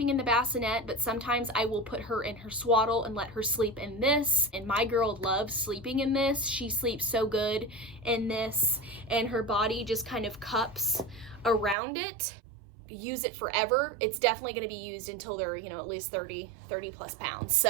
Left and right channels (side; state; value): left; drops out; at 11.8 s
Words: in the bassinet, but sometimes I will put her in her swaddle and let her sleep in this. And my girl loves sleeping in this. She sleeps so good in this, and her body just kind of cups around it. Use it forever. It's definitely going to be used until they're, you know, at least 30 plus pounds.